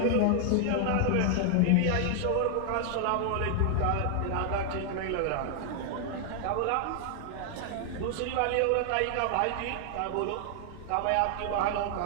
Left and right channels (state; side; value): different; both; correlation 0.00